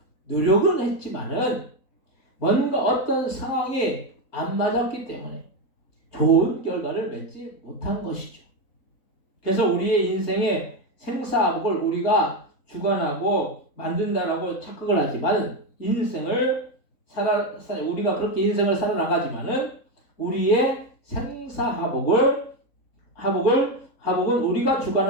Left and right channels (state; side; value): late; right; 3.8 ms